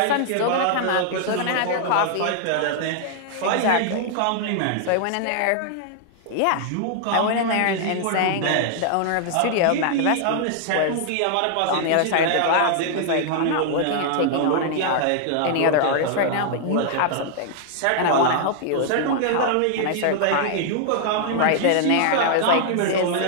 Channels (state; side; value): different; both; correlation -0.01